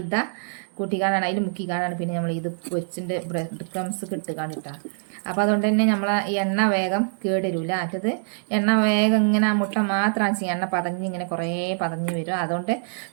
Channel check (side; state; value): left; silent; 62 dB below the other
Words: കൂട്ടിക്കാണാണ് അതിൽ മുക്കിക്കാണാണ് പിന്നെ നമ്മൾ ഇത് പൊരിച്ചിൻ്റെ ബ്രെഡ് ക്രംസ് കിട്ടുകാണ് കേട്ടോ. അപ്പോൾ അതുകൊണ്ട് തന്നെ നമ്മളെ ഈ എണ്ണ വേഗം കേടരൂല. മറ്റത് എണ്ണ വേഗം ഇങ്ങനെ ആ മുട്ട മാത്രം ചെയ്യും, എണ്ണ പതഞ്ഞ് ഇങ്ങനെ കുറേ പതഞ്ഞ് വരും. അതുകൊണ്ട്